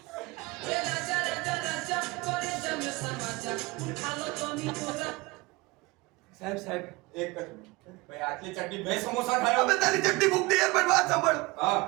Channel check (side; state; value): left; quieter; 23.0 dB